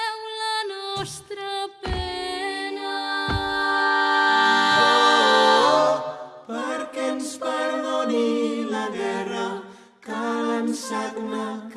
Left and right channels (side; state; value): both; identical; correlation 1.00